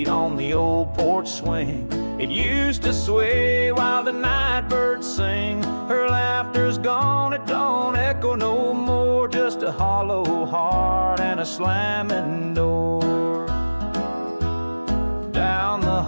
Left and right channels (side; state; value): both; inverted; correlation -1.00